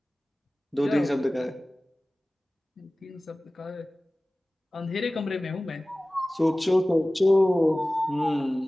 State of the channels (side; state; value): both; normal; correlation 0.97